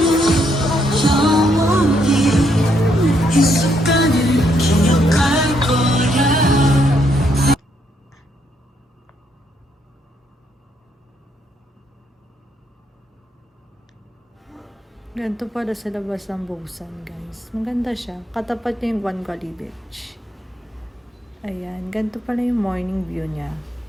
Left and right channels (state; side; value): normal; both; correlation 0.74